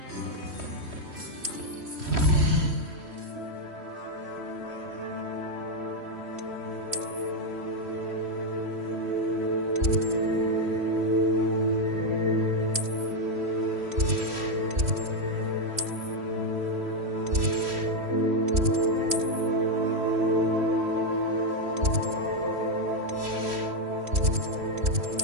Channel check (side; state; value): left; late; 3.1 ms